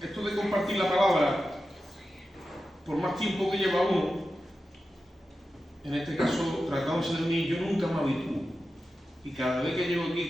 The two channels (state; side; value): normal; both; correlation 0.92